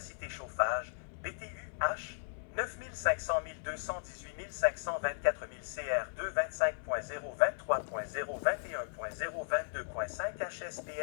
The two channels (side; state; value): right; silent; 54 dB below the other